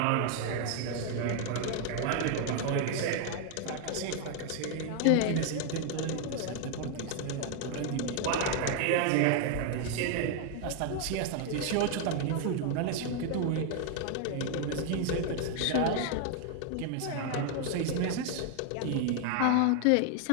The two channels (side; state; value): both; different; correlation 0.00